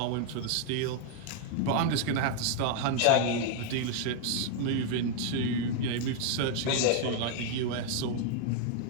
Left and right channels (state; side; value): different; both; correlation -0.01